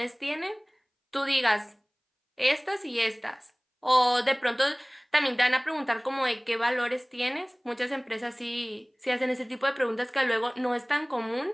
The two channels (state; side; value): identical; both; correlation 1.00